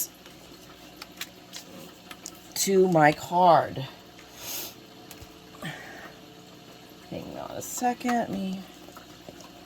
to my card. Hang on a second.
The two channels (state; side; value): identical; both; correlation 1.00